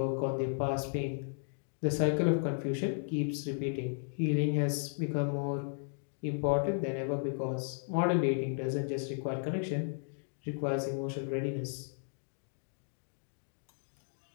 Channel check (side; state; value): right; silent; digital silence